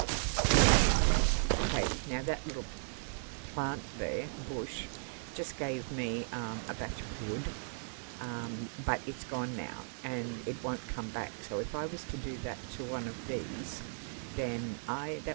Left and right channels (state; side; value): silent; left; digital silence